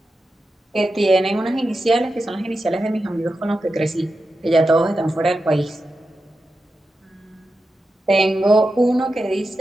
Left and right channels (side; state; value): both; normal; correlation 0.90